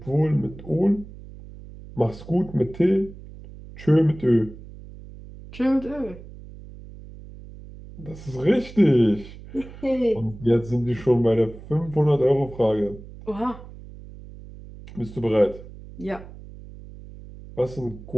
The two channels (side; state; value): right; noise; hum, 16 dB below the sound